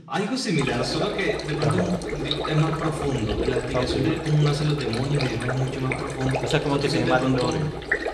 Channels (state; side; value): identical; both; correlation 1.00